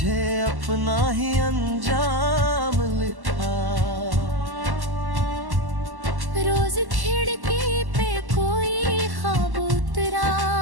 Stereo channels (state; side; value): late; left; 1.1 ms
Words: अपना ही अंजाम लिखा। रोज खिड़की पे कोई ख्वाब